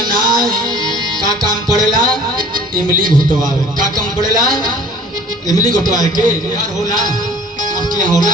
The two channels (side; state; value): both; normal; correlation 0.48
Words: का काम पड़ेला? इमली घोटवावे। का काम पड़ेला? इमली घोटवाए के यार होला आपके यहाँ